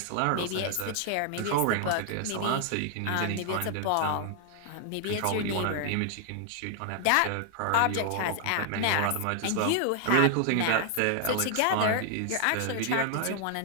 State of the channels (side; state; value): both; different; correlation 0.00